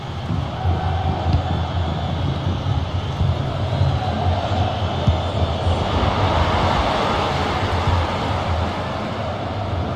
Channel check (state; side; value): identical; both; correlation 1.00